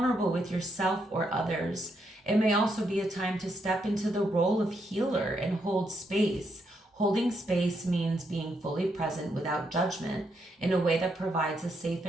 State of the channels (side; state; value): both; normal; correlation 0.78